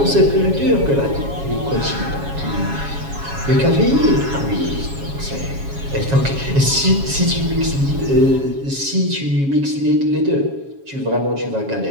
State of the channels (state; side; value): late; left; 7.3 ms